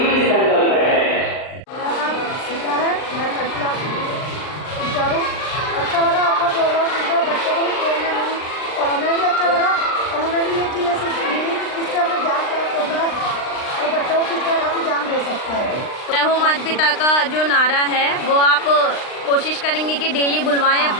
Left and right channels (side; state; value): right; late; 39 ms